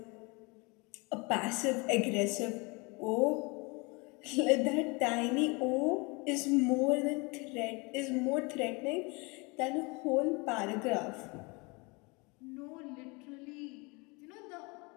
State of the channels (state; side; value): quieter; right; 28.2 dB